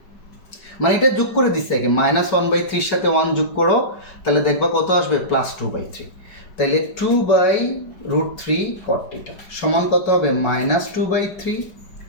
মানে এটা যোগ করে দিচ্ছে আগে, মাইনাস 1/3 সাথে 1 যোগ করো তাহলে দেখবা কত আসবে প্লাস 2/3, তাহলে 2/√3 কট টিটা সমান কত হবে মাইনাস 2/3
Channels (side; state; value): right; late; 5.0 ms